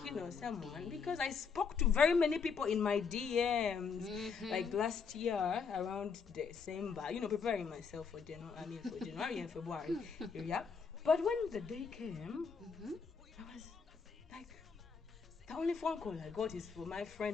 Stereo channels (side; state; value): right; quieter; 5.7 dB